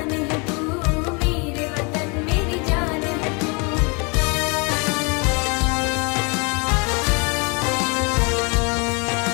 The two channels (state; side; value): quieter; right; 31.8 dB